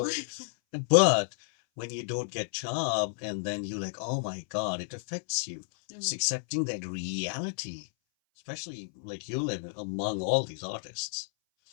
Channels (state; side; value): silent; right; 57 dB below the other